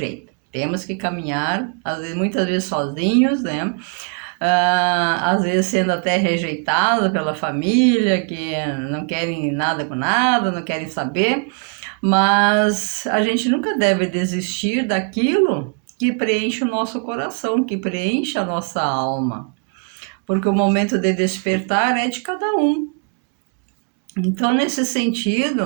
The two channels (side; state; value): left; quieter; 37.2 dB